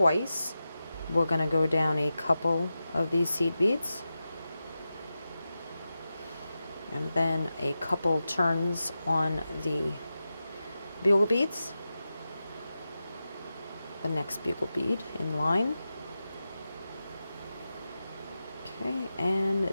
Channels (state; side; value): inverted; both; correlation -0.91